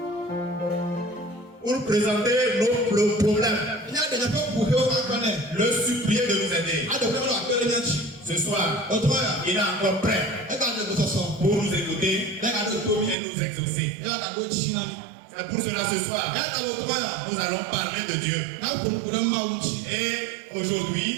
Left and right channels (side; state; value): left; drops out; at 13.2 s